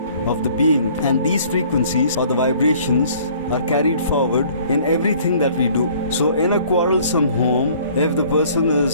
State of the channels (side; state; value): both; inverted; correlation -0.55